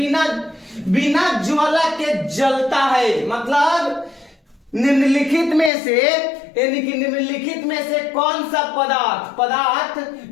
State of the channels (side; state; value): right; drops out; at 5.7 s